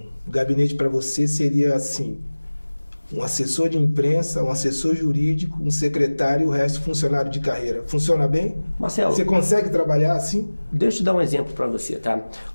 gabinete para você seria assim: um assessor de imprensa, um assessor jurídico, um secretário e o resto funcionário de carreira. Funciona bem? Marcelo, você consegue trabalhar assim? Deixa eu te dar um exemplo para você, tá?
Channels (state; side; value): inverted; both; correlation -1.00